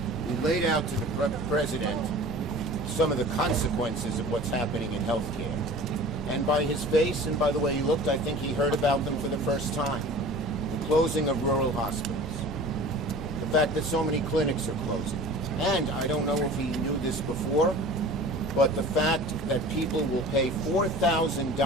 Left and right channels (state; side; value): normal; both; correlation 0.41